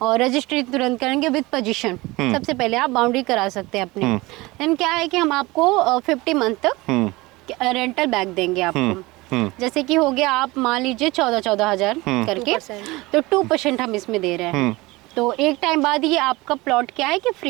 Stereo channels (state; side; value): quieter; left; 21.6 dB